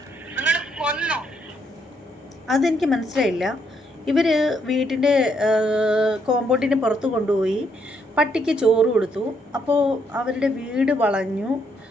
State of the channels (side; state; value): both; normal; correlation 0.73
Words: നിങ്ങൾ കൊന്നോ? അതെനിക്ക് മനസ്സിലായില്ല. ഇവർ വീട്ടിൻ്റെ കോമ്പൗണ്ടിന് പുറത്ത് കൊണ്ടുപോയി പട്ടിക്ക് ചോറ് കൊടുത്തു. അപ്പോൾ അവരുടെ വീട് വളഞ്ഞു,